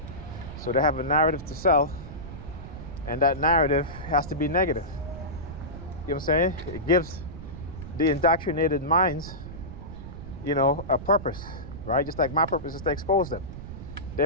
So they have a narrative to sell, and that narrative has to be negative. You know what I'm saying? It gives the indoctrinated minds, a purpose, right? Just like my purpose is to expose them.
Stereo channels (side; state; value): right; noise; rumble, 12 dB below the sound